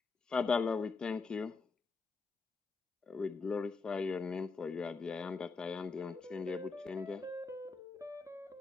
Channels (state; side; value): quieter; right; 4.4 dB